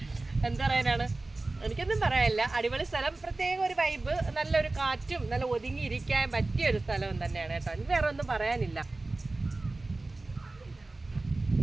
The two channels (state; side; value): quieter; left; 3.1 dB